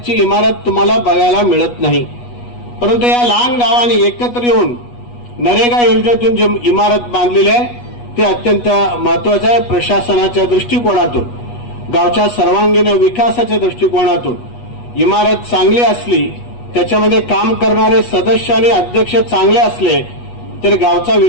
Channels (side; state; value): right; late; 8.3 ms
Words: इमारत तुम्हाला बघायला मिळत नाही. परंतु या लहान गावांनी एकत्र येऊन नरेगा योजनेतून जी इमारत बांधलेली आहे ते अत्यंत महत्वाचं आहे. प्रशासनाच्या दृष्टिकोनातून, गावच्या सर्वांगीण विकासाच्या दृष्टिकोनातून इमारत चांगली असली, त्याच्यामध्ये काम करणारे सदस्य आणि अध्यक्ष चांगले असले तर गावचा